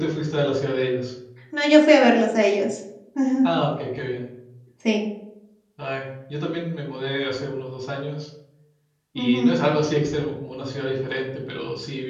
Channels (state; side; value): identical; both; correlation 1.00